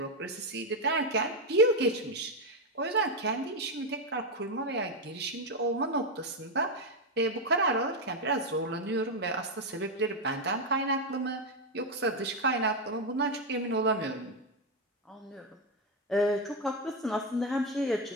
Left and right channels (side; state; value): both; normal; correlation 0.06